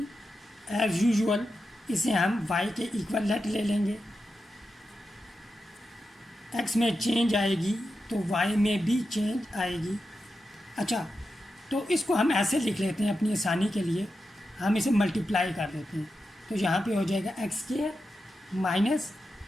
As usual इसे हम y के equal late ले लेंगे। x में चेंज आएगी तो y में भी चेंज आएगी। अच्छा, तो इसको हम ऐसे लिख लेते हैं अपनी आसानी के लिए, हम इसे मल्टीप्लाई कर देते हैं। तो यहाँ पे हो जाएगा x² माइनस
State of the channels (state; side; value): normal; both; correlation 0.89